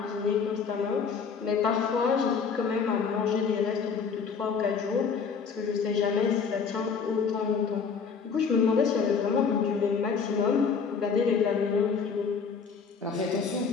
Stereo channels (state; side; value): quieter; right; 5.8 dB